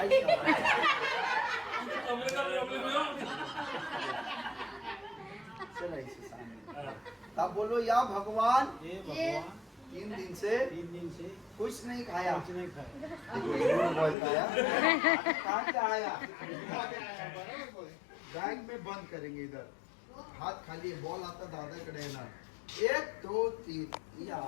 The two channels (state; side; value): drops out; right; at 14.2 s